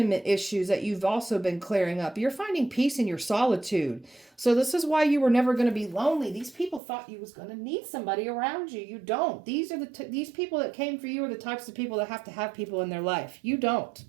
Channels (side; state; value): left; drops out; at 6.8 s